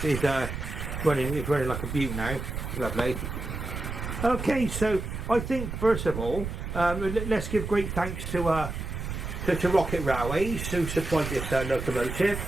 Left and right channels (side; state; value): right; noise; rumble, 5 dB below the sound